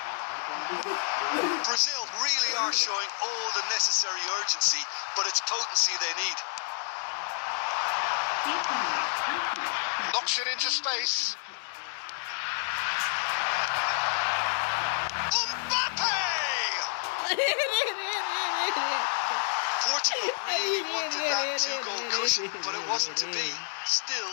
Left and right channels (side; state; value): right; silent; digital silence